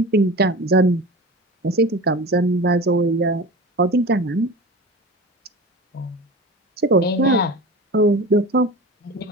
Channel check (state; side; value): normal; both; correlation 0.32